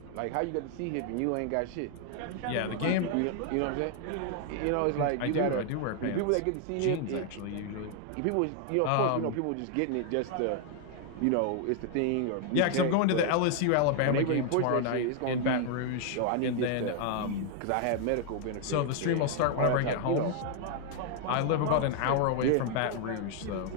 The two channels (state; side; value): different; both; correlation 0.00